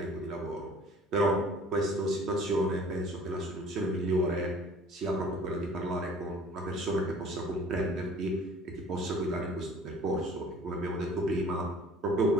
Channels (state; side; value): normal; both; correlation 0.50